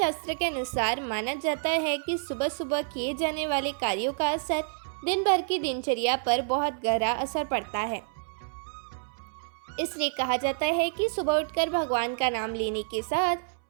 के अनुसार माना जाता है कि सुबह सुबह किए जाने वाले कार्यों का असर दिन भर की दिनचर्या पर बहुत गहरा असर पड़ता है। इसलिए कहा जाता है कि सुबह उठकर भगवान का नाम लेने के साथ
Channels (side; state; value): left; silent; 59 dB below the other